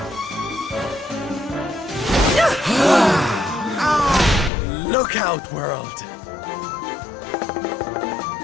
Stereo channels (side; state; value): right; drops out; at 4.5 s